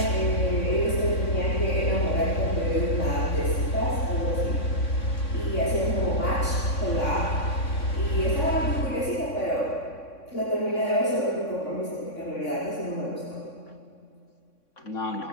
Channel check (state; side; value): late; right; 3.6 ms